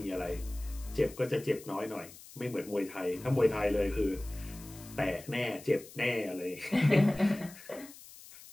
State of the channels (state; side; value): noise; left; hiss, 18 dB below the sound